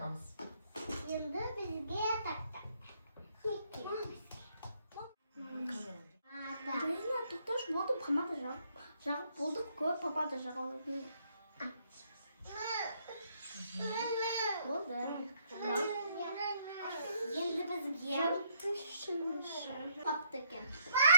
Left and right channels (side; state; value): both; inverted; correlation -0.70